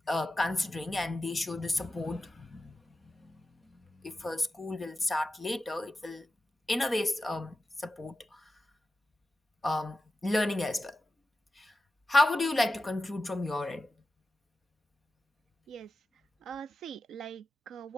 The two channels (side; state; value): both; normal; correlation 0.92